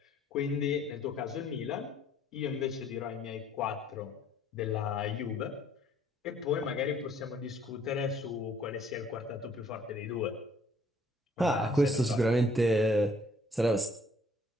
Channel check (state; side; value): normal; both; correlation 0.62